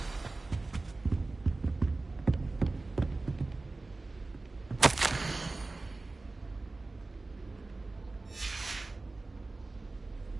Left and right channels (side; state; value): left; quieter; 3.3 dB